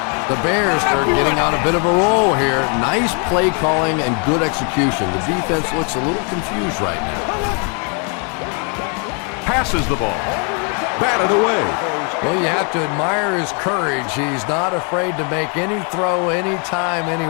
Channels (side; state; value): right; quieter; 38.2 dB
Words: The Bears are getting on a bit of a roll here. Nice play calling and good execution. The defense looks a little confused right now. Passes the ball. Batted away. Well, you have to admire his courage. He's not afraid to make any throw, anytime,